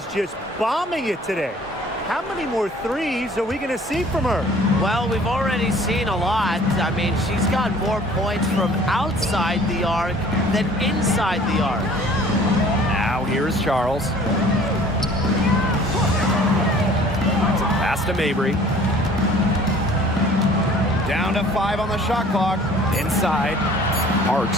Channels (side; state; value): both; normal; correlation 0.51